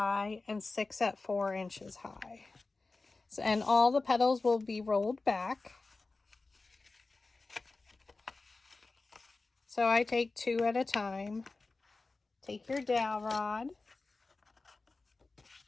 and 6 at 4 inches high. So, and all the petals will be rolled back. So I take 2 at a time. Take your dowel rod.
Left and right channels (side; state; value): right; quieter; 3.6 dB